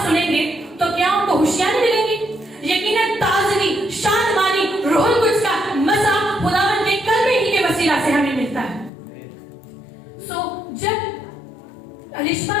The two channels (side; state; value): right; drops out; at 8.9 s